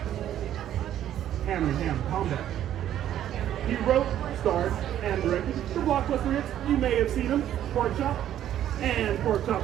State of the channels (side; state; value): left; quieter; 11.3 dB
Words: hand-to-hand combat. He wrote, starred, and directed the blockbuster hits. You may have seen him, Pork Chop and Pork Chop